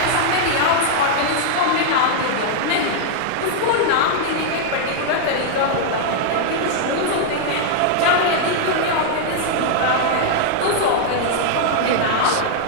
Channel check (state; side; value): different; both; correlation -0.01